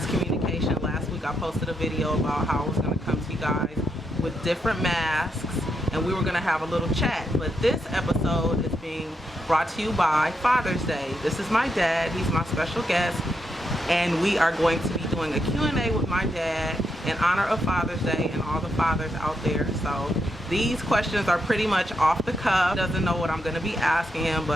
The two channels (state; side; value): normal; both; correlation 0.81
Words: communication. Last week I posted a video about how I was going to come to you guys with different masks and we were going to have a little chat. But this episode is being brought to you by Father's Day. This is my dad. He's my special guest. And we are going to be doing a Q&A with my dad in honor of Father's Day and all the fathers out there. So these questions are pretty much off the cuff. He doesn't know what I'm going to be asking him,